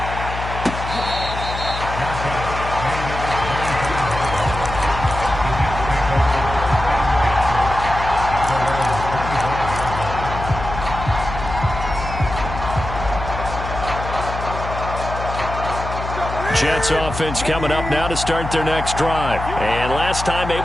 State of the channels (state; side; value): noise; left; hum, 7 dB below the sound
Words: Jets offense coming up now to start their next drive. And last time